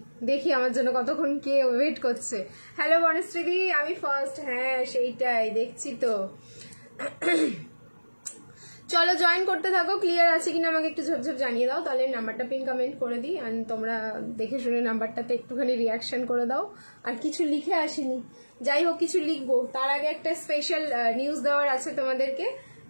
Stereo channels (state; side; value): inverted; both; correlation -1.00